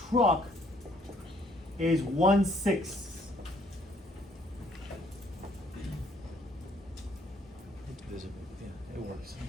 truck is 1/6. Yeah, it works.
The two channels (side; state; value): both; normal; correlation 0.64